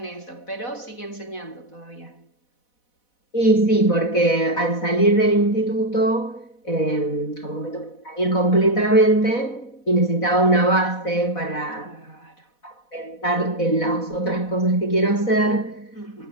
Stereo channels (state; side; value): late; right; 4.1 ms